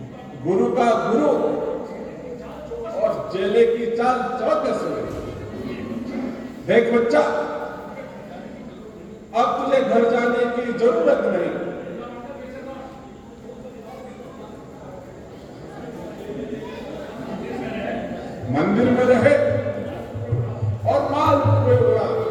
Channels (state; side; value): identical; both; correlation 1.00